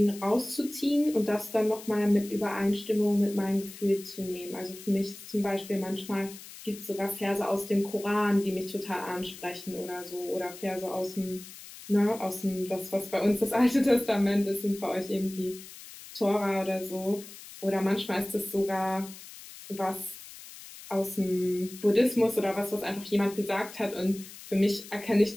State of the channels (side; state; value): left; noise; hiss, 16 dB below the sound